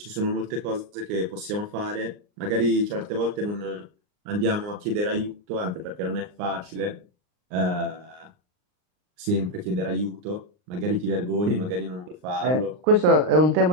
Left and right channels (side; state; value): left; late; 39 ms